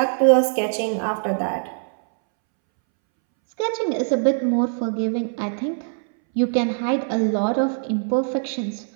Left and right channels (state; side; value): silent; left; 64 dB below the other